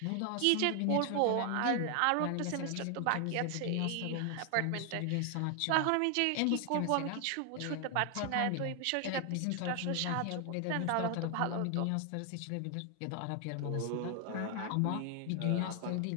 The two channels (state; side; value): different; both; correlation 0.00